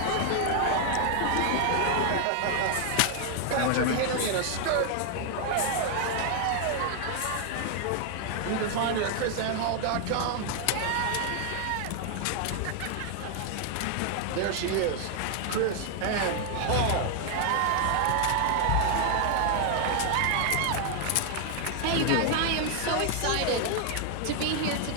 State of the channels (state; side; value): different; both; correlation 0.00